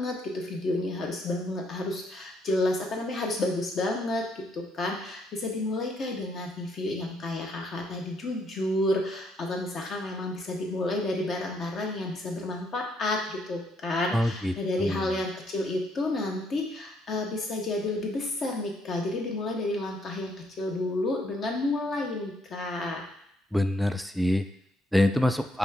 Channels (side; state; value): both; normal; correlation 0.72